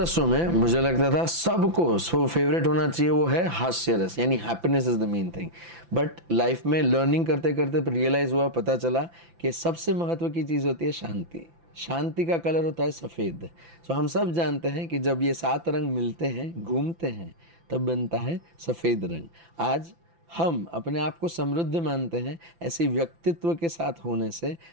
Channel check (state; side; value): late; left; 5.9 ms